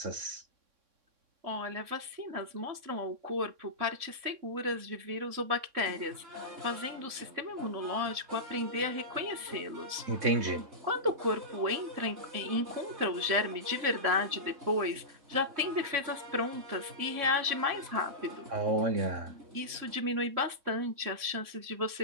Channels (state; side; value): late; left; 3.6 ms